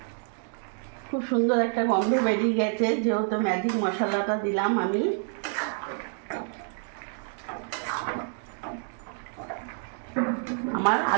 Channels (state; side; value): silent; left; 59 dB below the other